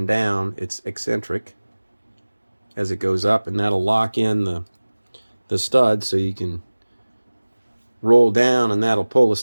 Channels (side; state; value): both; inverted; correlation -1.00